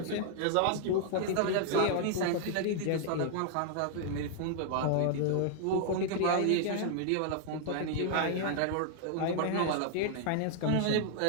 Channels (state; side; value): different; both; correlation 0.00